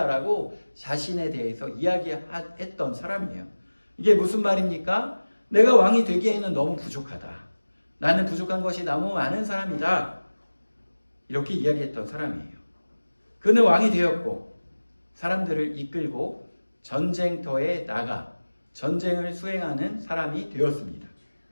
자신에 대해서 이야기했던 사람이에요. 이게 무슨 말입니까? 내가 왕이 되기에는 너무 부족하다. 나는 부족한 것이 너무 많은 사람이다. 이렇게 이야기했던 사람이에요. 그는 왕이 되었고 사람들을 이끌고 전쟁터에 나가 전쟁을 수행하는 사람이 되었습니다.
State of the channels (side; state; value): both; inverted; correlation -1.00